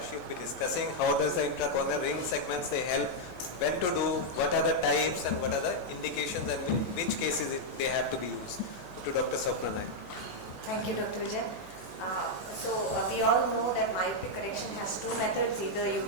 She will be discussing how does the intracorneal ring segments they help, when to do, what are the types and what are the indications and in which cases they have to be used. To Dr. Swapna Nair. Thank you, Dr. Vijay. We all know that myopia correction has two methods. Either you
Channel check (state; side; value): normal; both; correlation -0.02